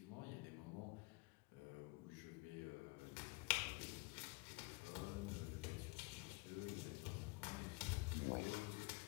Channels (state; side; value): quieter; right; 25.8 dB